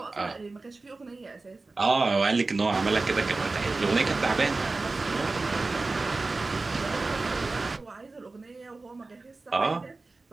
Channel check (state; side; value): quieter; left; 3.5 dB